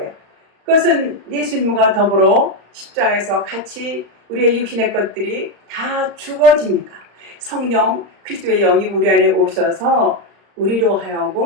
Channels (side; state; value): left; late; 34 ms